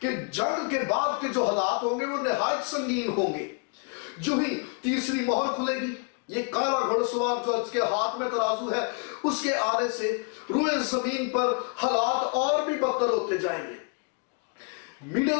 کہ جنگ کے بعد کے جو حالات ہوں گے وہ نہایت سنگین ہوں گے. جو ہی تیسری مہر کھلے گی, یہ کالا گھڑ سوار جو اس کے ہاتھ میں ترازو ہے, اس کے آنے سے روئے زمین پر حالات اور بھی بدتر ہوتے جائیں گے. مڈل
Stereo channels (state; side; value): quieter; right; 35.9 dB